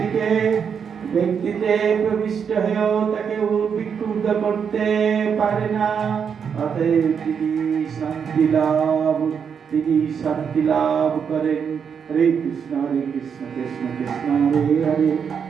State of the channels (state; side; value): quieter; left; 7.0 dB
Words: ব্যক্তিতে প্রবিষ্ট হয়েও তাকে বিক্ষুব্ধ করতে পারে না। অতএব তিনি শান্তি লাভ করেন। हरे कृष्ण कृष्ण कृष्ण हरे हरे,